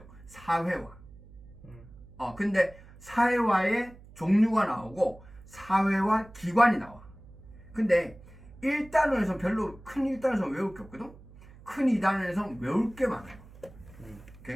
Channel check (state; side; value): noise; right; hum, 21 dB below the sound